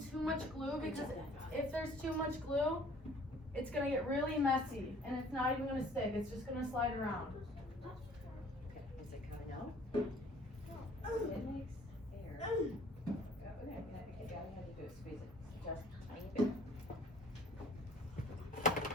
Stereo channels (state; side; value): normal; both; correlation 0.54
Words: much glue, because if there's too much glue, it's gonna get really messy and it's not even gonna stick, it's just gonna slide around. Okay, is it coming out? It makes air. Okay, all you have to do is squeeze it just a tiny bit.